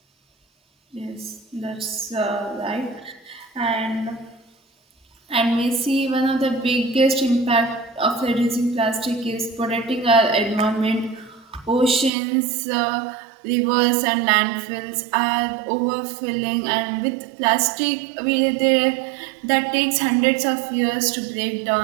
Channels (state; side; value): drops out; left; at 12.1 s